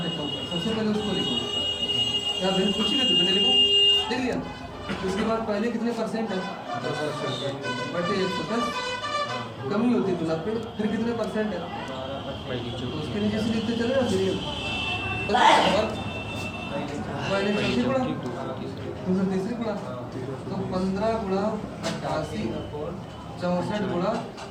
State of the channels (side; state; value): both; identical; correlation 1.00